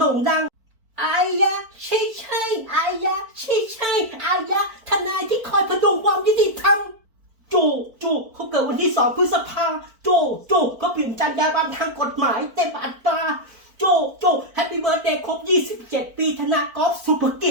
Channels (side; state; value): left; late; 4.5 ms